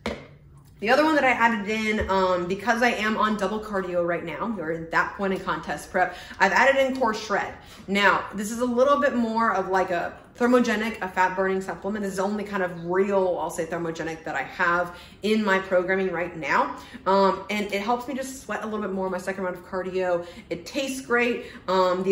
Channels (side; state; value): both; identical; correlation 1.00